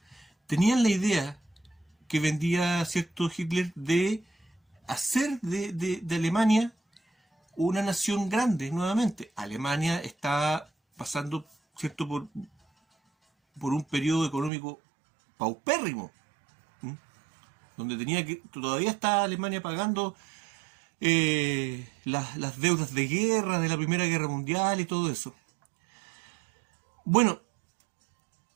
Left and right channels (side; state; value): left; drops out; at 14.5 s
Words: tenían la idea que vendía, ¿cierto?, Hitler de hacer de Alemania una nación grande nuevamente. Alemania está pasando, ¿cierto?, por un periodo económico paupérrimo, donde todavía está Alemania pagando las deudas de guerra, de la Primera Guerra Mundial y todo eso. Bueno,